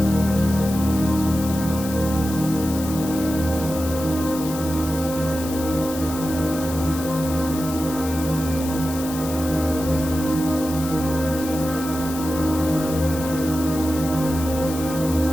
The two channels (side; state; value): left; noise; hiss, 11 dB below the sound